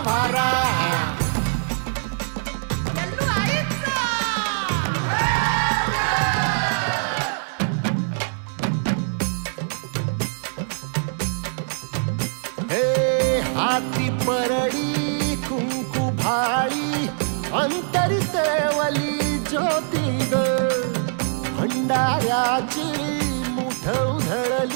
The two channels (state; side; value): silent; left; 63 dB below the other